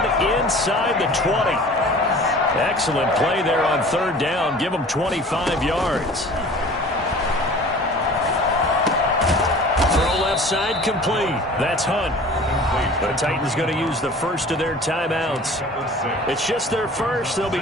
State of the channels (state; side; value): normal; both; correlation 0.44